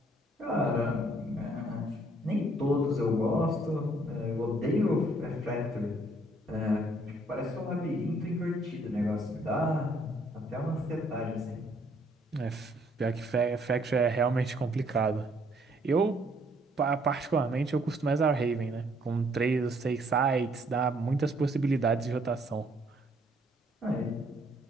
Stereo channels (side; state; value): both; normal; correlation 0.65